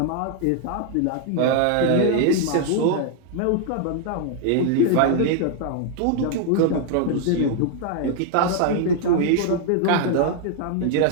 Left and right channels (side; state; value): both; different; correlation 0.00